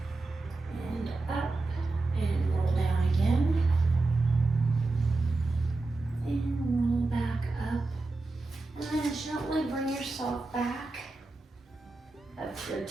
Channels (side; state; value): left; quieter; 3.3 dB